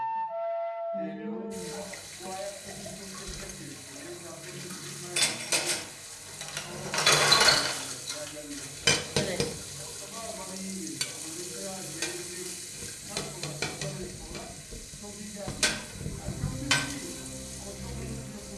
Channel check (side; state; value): both; identical; correlation 1.00